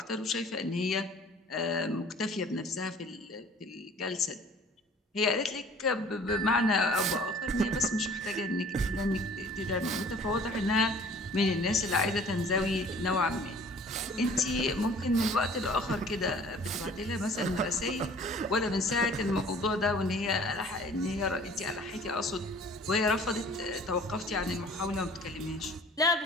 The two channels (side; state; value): both; normal; correlation 0.50